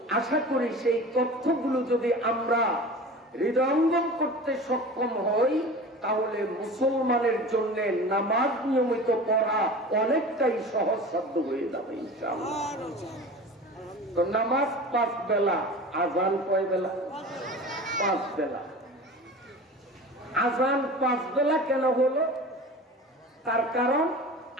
আশা করি সেই তথ্যগুলো যদি আমরা হৃদয়ঙ্গম করতে সক্ষম হই, তাহলে মুসলমানের জন্য নামাজ নিয়মিত পড়া অনেকটাই সহজসাধ্য হয়ে যাবে ইনশাআল্লাহ। তো নামাজ 5 বেলা, আজান কয় বেলা? 5 বেলা। আজান 5 বেলা কেন হলো? তার কারণ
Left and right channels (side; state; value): both; normal; correlation 0.36